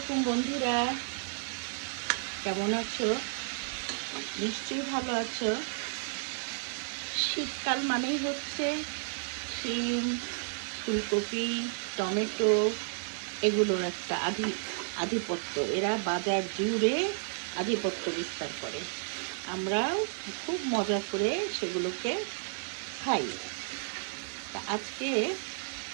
বন্ধুরা, কেমন আছো? নিশ্চয়ই ভালো আছো। শীতকাল মানেই হচ্ছে শিম, ফুলকপি, টমেটো এগুলোর একটা আধিপত্য। এরা বাজার জুড়ে আধিপত্য বিস্তার করে। আমরাও খুব মজা করে সেগুলোকে খাই। তা আজকে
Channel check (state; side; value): silent; left; digital silence